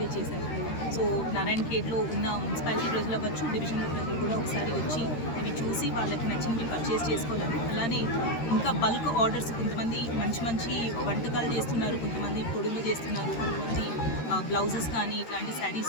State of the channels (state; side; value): late; right; 13 ms